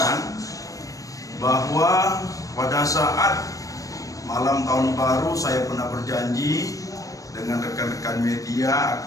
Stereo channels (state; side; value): late; right; 0.16 ms